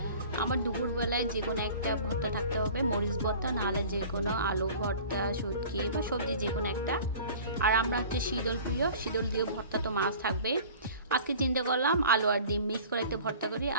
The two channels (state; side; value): inverted; both; correlation -0.44